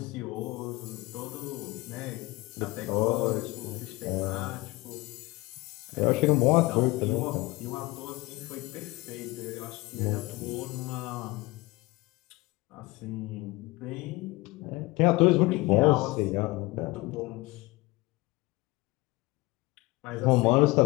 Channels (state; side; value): quieter; right; 21.8 dB